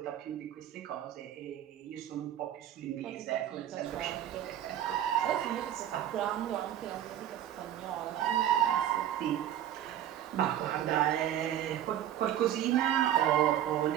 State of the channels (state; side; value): quieter; left; 11.2 dB